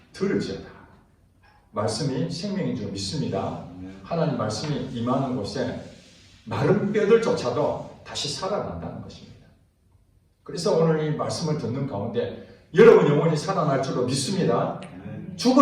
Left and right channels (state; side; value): identical; both; correlation 1.00